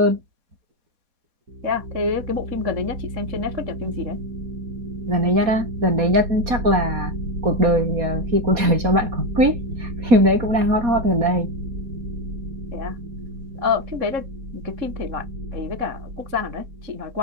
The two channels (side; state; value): left; late; 4.2 ms